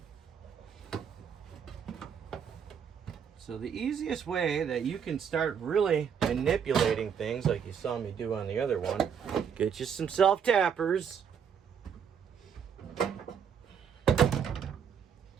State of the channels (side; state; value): left; quieter; 7.5 dB